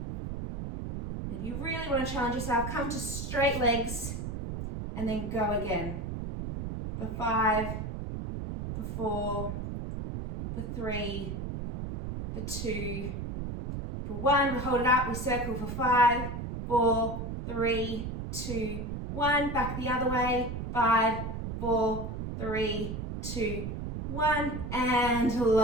And if you really want to challenge yourself, come to straight legs and then go again. For 5, for 4, for 3, for 2, for 1. We hold it up, we circle for 5, 4, 3, 2, 1. Back the other way. 5, 4, 3, 2, 1. And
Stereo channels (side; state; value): right; noise; rumble, 5 dB below the sound